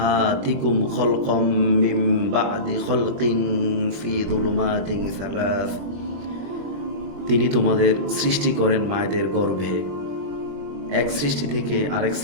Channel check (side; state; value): left; late; 21 ms